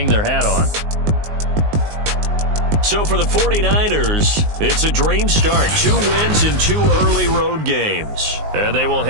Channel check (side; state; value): left; late; 19 ms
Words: their hat on. So for the 49ers, it's a dream start. 2 wins in 2 early road games. And they will